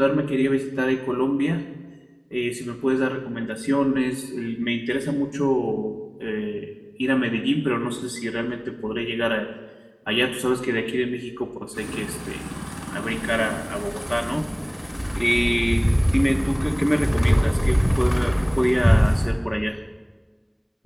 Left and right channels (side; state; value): both; identical; correlation 1.00